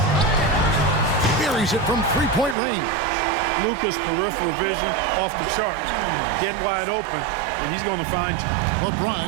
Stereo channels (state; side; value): drops out; left; at 2.6 s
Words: Buries it from 3-point range. Luka's peripheral vision off the chart. Get wide open, and he's going to find you.